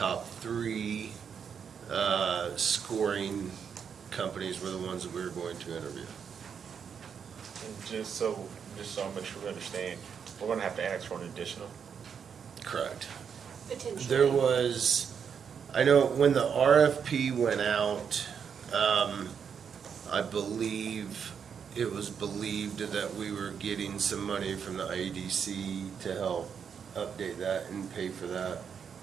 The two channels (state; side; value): quieter; left; 7.1 dB